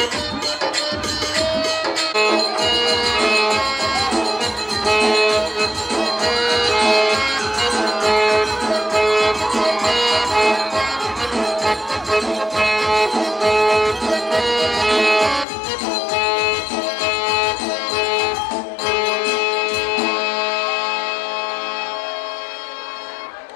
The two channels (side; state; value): right; drops out; at 15.5 s